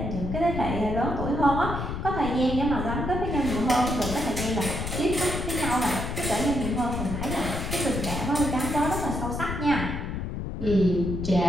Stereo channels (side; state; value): left; noise; rumble, 4 dB below the sound